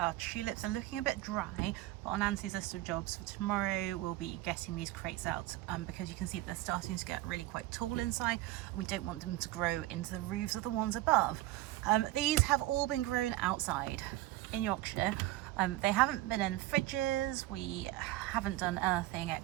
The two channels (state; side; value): quieter; left; 16.6 dB